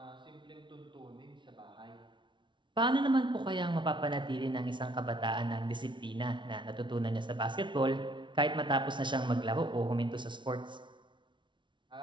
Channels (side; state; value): left; late; 0.24 ms